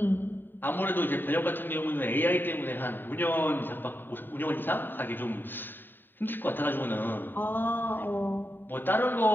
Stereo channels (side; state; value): right; late; 0.094 ms